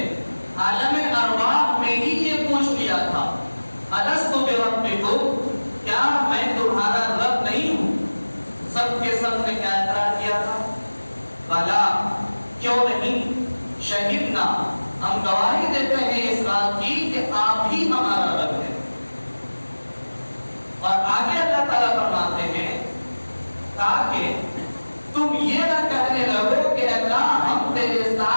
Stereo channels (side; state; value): both; inverted; correlation -1.00